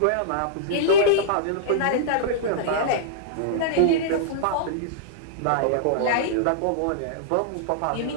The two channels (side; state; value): both; different; correlation -0.02